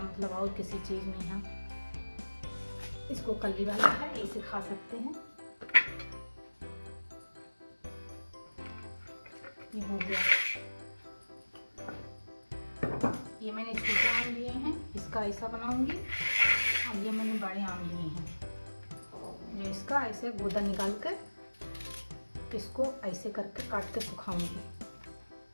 और किसी चीज़ में हम इसको कली वाला है, इसे खा सकते हैं। ये हो गया। ये मैंने छोटे आम लिए हैं, इसका ऐसा बनाऊंगी। और ये मैंने बड़े आम लिए हैं, जो इसका ऐसे गूदा निकाल कर इसको ऐसे करके काट के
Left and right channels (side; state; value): both; inverted; correlation -1.00